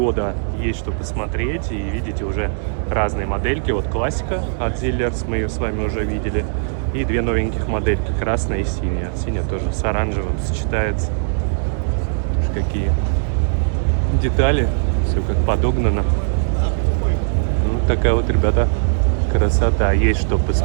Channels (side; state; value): left; silent; digital silence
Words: есть что посмотреть. И видите уже разные модельки. Вот классика от Zillers, мы ее с вами уже видели. И две новеньких модельки, красная и синяя. Синяя тоже с оранжевым сочетается. Какие детали, все как подогнано. Ну, такая вот, ребята, красота. Есть что